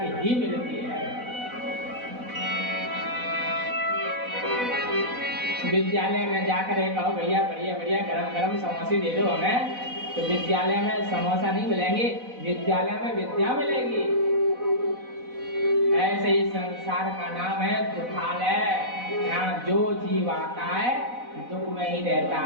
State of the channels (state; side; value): late; left; 4.0 ms